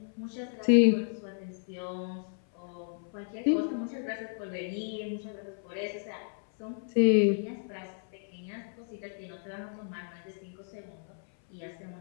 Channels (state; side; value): silent; right; 56 dB below the other